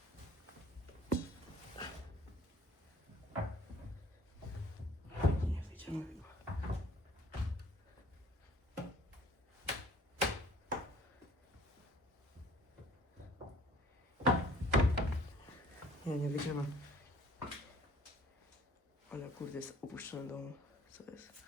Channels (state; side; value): normal; both; correlation 0.54